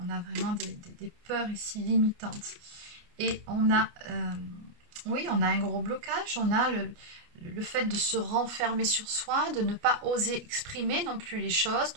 on a vraiment des peurs ici limitantes. Et on a, oui, on a un gros blocage, on a le fait de se renfermer sur soi, de ne pas oser exprimer non plus les choses.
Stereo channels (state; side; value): late; left; 29 ms